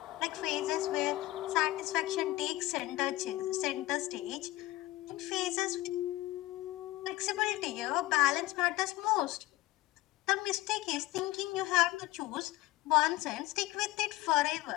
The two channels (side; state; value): right; quieter; 17.7 dB